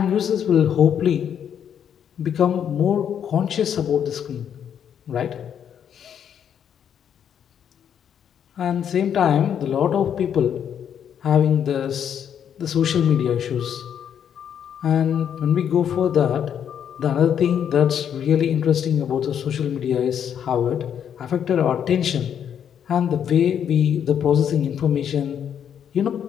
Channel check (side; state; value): right; quieter; 8.7 dB